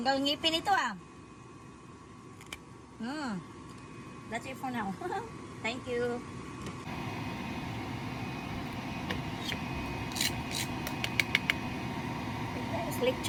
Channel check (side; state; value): both; identical; correlation 1.00